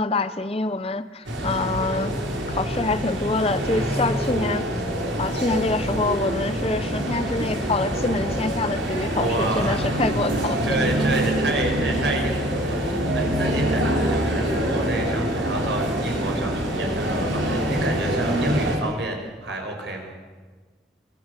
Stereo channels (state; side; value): normal; both; correlation 0.48